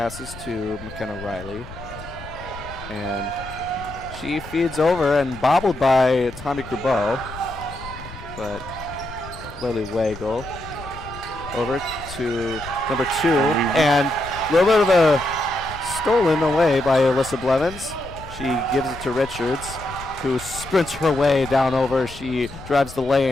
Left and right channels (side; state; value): left; noise; rumble, 15 dB below the sound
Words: to McKenna Riley. And she feeds over and bobbled by Tommy Crubeau. But Lily Wagle over to number 2. And a little bit of a stolen away by Alyssa Blevins. She gives it to Richards, who sprints her way down over. She drives the